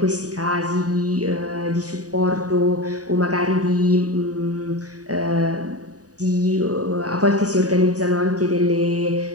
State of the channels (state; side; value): late; left; 0.67 ms